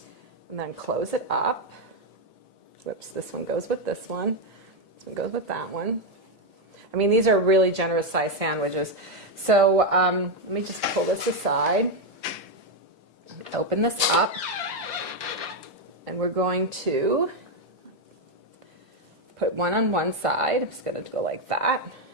And then close it up. Whoops, this one goes with this one. This one goes with that one. I mean, these are really generous sized sandwiches. So let me just pull this aside, open this up, and we're going to put one on one side. I'm just going to go like that,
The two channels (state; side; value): normal; both; correlation 0.04